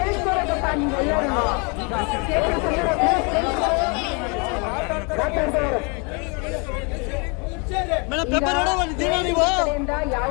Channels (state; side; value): quieter; right; 32.8 dB